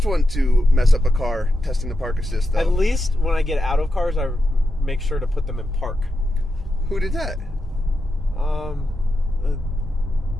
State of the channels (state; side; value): normal; both; correlation 0.87